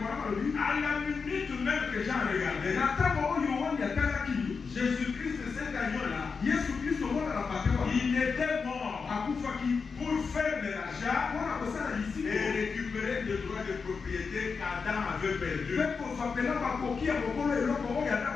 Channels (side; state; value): right; quieter; 5.2 dB